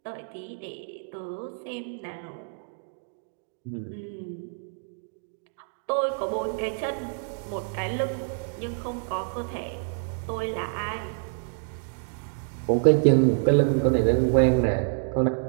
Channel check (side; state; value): left; silent; 60 dB below the other